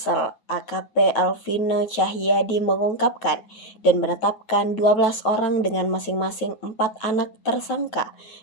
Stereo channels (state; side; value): late; right; 8.9 ms